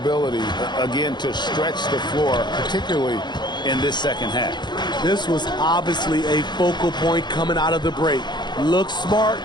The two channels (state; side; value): late; right; 0.21 ms